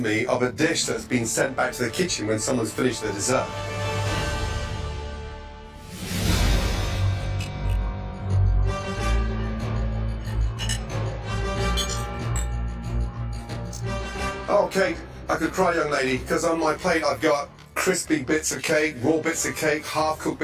of a dish that's been sent back to the kitchen when someone's finished their dessert. Oh, Kate, I could cry, young lady, because on my plate I've got crispy bits of cake, raw bits of cake, half-cooked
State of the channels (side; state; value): both; identical; correlation 1.00